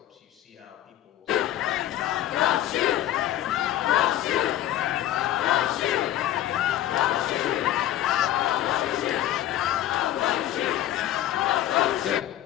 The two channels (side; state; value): right; quieter; 12.7 dB